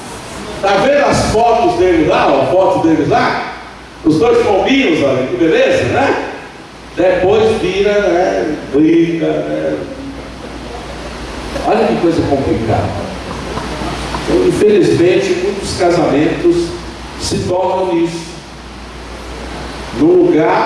Está vendo as fotos deles lá? A foto deles lá? Os dois pombinhos, olha que beleza, né? Depois vira, né? Briga, né? Olha que coisa complicada. Então, infelizmente, muitos casamentos se tornam isso. Num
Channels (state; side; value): identical; both; correlation 1.00